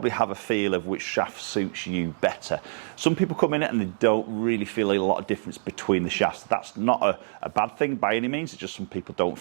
have a feel of which shaft suits you better. Some people come in it and they don't really feel a lot of difference between the shafts. That's not a bad thing by any means, it's just some people don't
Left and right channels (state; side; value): silent; left; digital silence